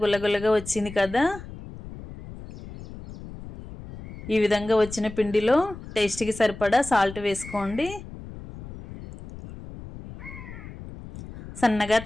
గుల్లగుల్లగా వచ్చింది కదా. ఈ విధంగా వచ్చిన పిండిలో టేస్ట్కి సరిపడా సాల్ట్ వేసుకోండి. సన్నగా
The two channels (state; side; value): noise; left; rumble, 14 dB below the sound